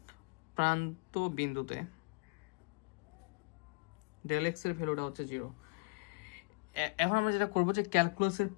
প্রান্ত বিন্দুতে ডেল এক্স এর ভ্যালুটা হচ্ছে 0। এখন আমরা যেটা করবো যে ক্যালকুলাসের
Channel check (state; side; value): quieter; right; 32.4 dB